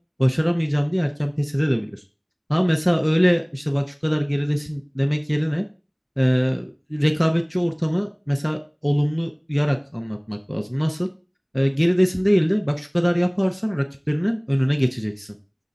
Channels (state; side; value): identical; both; correlation 1.00